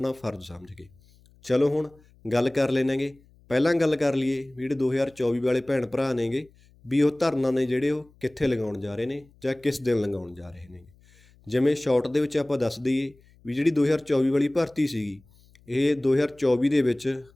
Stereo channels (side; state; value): left; noise; hum, 29 dB below the sound